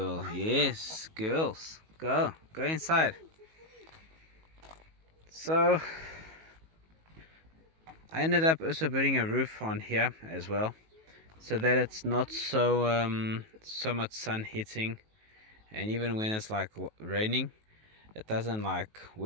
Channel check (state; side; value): late; left; 19 ms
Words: Yes, girls. Go inside. So I ended up also putting a roof on here as well, so that it's not so much sun hitting, and even when it's like raining, it doesn't like